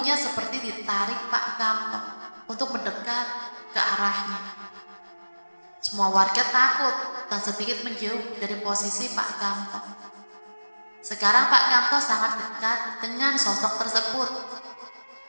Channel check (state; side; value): inverted; both; correlation -1.00